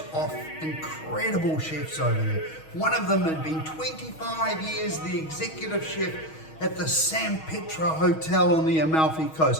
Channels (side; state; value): right; late; 6.3 ms